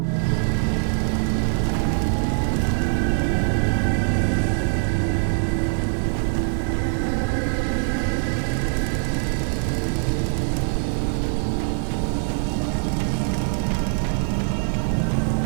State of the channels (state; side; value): silent; left; 57 dB below the other